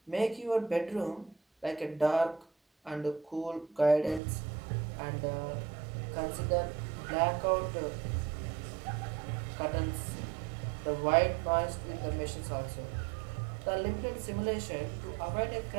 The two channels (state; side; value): drops out; left; at 4.2 s